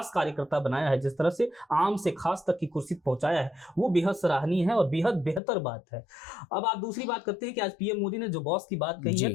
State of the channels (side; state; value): right; drops out; at 5.4 s